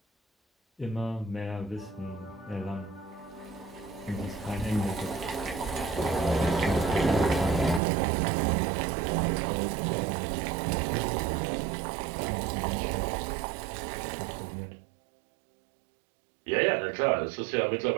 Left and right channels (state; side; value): drops out; left; at 7.8 s